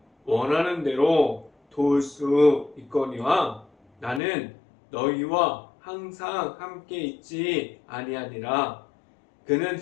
원하는 대로 도울 수 있거니와 나는 너희와 항상 함께 있지 아니하니라. 그는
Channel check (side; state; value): right; drops out; at 4.2 s